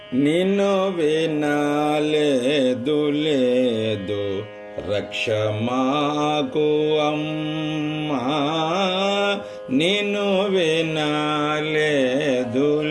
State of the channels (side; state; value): both; identical; correlation 1.00